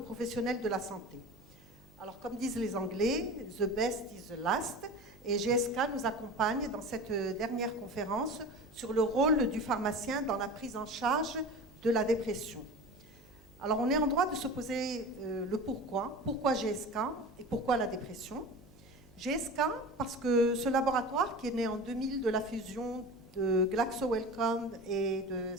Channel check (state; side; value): normal; both; correlation 0.33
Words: de la santé. Alors, comme disent les Anglais, the best is the last, et GSK nous accompagne dans cette dernière conférence sur le rôle du pharmacien dans la prise en charge de la dépression. Alors, on est en droit de se poser le pourquoi. Pourquoi GSK et pourquoi la dépression? GSK, parce que ce laboratoire qui est né en 2000 de la fusion de Glaxo Wellcome et de